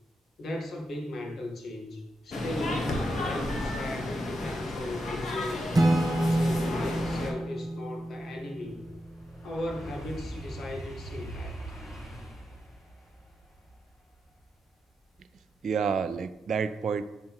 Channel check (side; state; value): both; normal; correlation 0.86